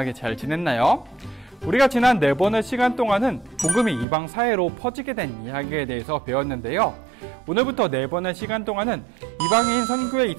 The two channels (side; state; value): left; drops out; at 4.0 s